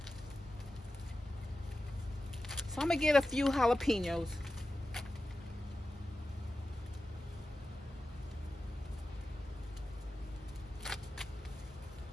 So I'm gonna get a few jalapenos.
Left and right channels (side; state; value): both; normal; correlation 0.93